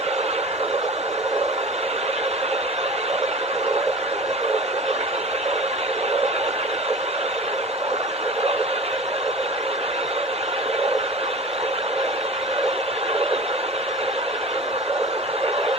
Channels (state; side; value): normal; both; correlation 0.37